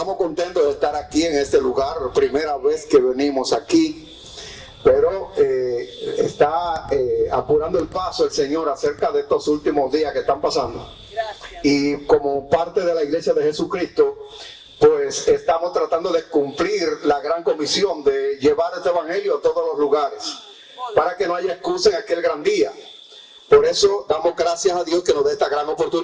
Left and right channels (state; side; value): identical; both; correlation 1.00